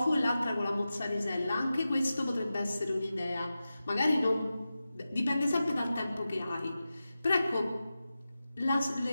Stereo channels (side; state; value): both; inverted; correlation -0.93